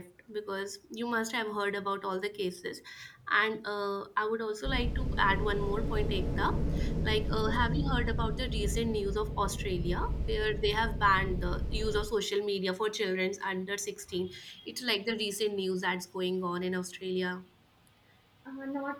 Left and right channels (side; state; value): both; identical; correlation 1.00